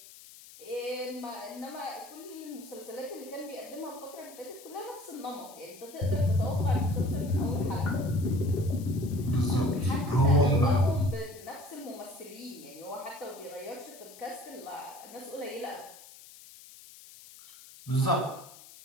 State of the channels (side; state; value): left; noise; hiss, 19 dB below the sound